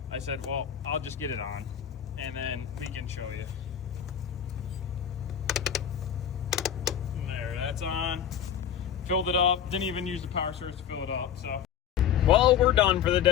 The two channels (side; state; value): right; quieter; 9.1 dB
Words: I said, well, I'll just get it on and then we can show you. And there, that's on. Filled it up. Didn't even use the power source to fill it up. So, well, we're done for the